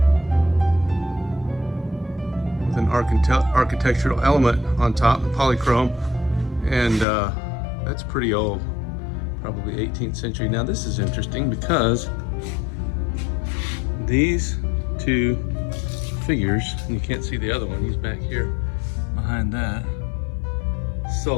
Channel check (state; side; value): drops out; right; at 7.1 s